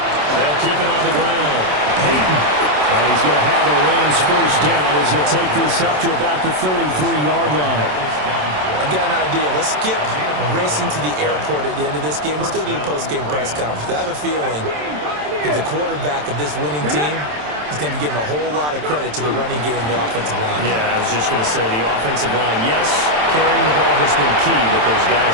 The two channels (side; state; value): left; late; 27 ms